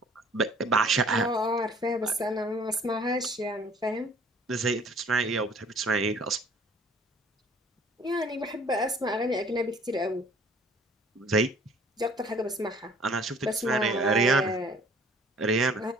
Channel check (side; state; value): both; normal; correlation 0.54